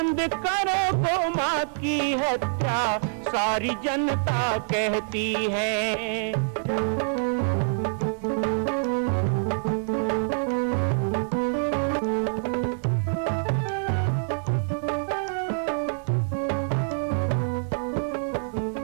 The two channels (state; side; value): silent; left; 61 dB below the other